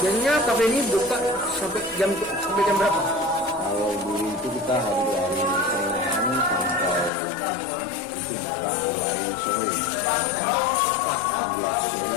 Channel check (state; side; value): drops out; right; at 7.1 s